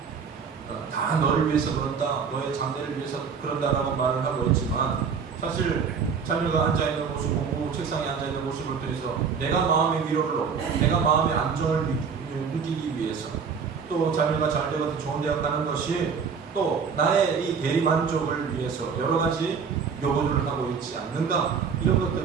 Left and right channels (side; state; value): left; quieter; 6.1 dB